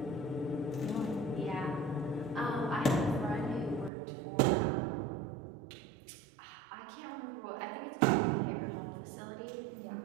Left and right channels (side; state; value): left; drops out; at 3.9 s